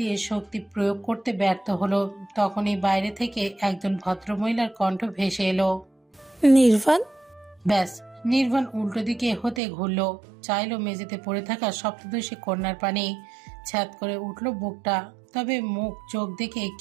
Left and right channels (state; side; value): drops out; left; at 9.6 s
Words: শক্তি প্রয়োগ করতে ব্যর্থ হলো। তখনই বাইরে থেকে একজন ভদ্রমহিলার কণ্ঠ ভেসে এলো। নির্বাণ। ব্যাস, নির্বাণ উল্টো দিকে হতে ঘুরলো, চাইলো মেঝেতে পড়ে থাকা সপ্তদশী কন্যার পানি। ছ্যাদ করে উঠল বুকটা, তবে মুখ চোখ দেখে